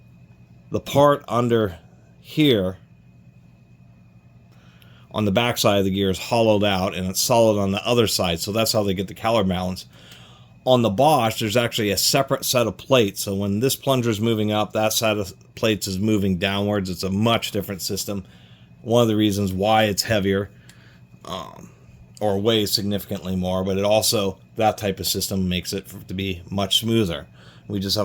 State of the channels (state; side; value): identical; both; correlation 1.00